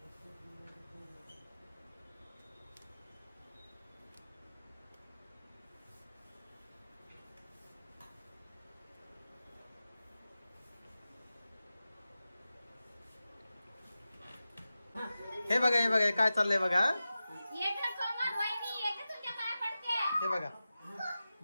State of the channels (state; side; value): inverted; both; correlation -0.94